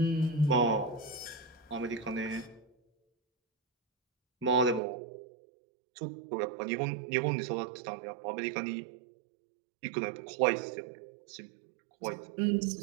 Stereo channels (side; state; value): left; drops out; at 4.8 s